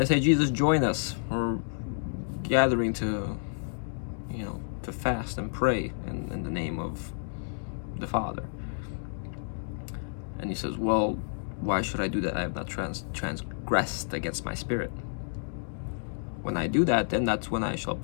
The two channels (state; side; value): silent; right; digital silence